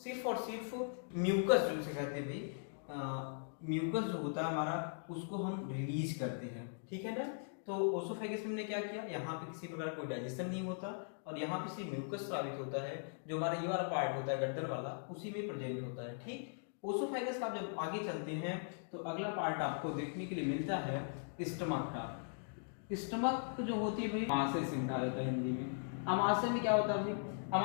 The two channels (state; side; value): silent; right; digital silence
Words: और सिर्फ म्यूकस जिसे कहते हैं भाई, म्यूकस जो होता है हमारा उसको हम रिलीज करते हैं। ठीक है ना, तो ओसोफेगस में हमने क्या किया, यहाँ पे किसी प्रकार कोई डाइजेशन नहीं होता और यहाँ पे सिर्फ म्यूकस स्रावित होता है, जो हमारा ये वाला पार्ट होता है गर्दन वाला, उसी में प्रेजेंट होता है। ठीक, ओसोफेगस का जब आगे चलते हैं तो अगला पार्ट आपको देखने के लिए मिलता है स्टमक का। स्टमक जो होती है भाई आमाशय से मिला जाता है हिंदी में। आमाशय में क्या होता है भाई,